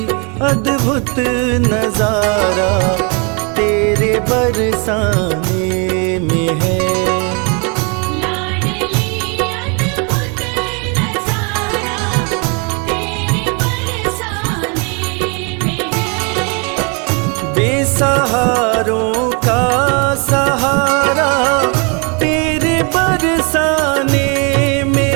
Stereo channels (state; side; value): quieter; left; 34.2 dB